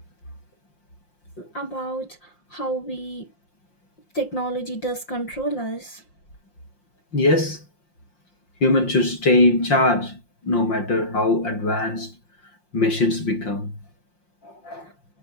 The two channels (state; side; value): late; right; 5.7 ms